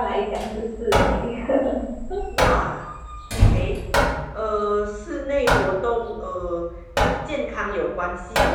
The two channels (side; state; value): both; identical; correlation 1.00